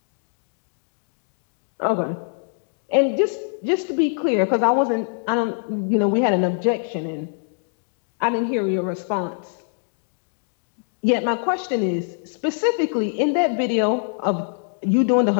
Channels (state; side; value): silent; right; digital silence